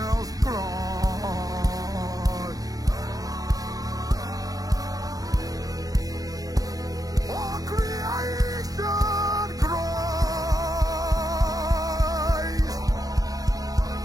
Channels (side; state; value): left; late; 0.18 ms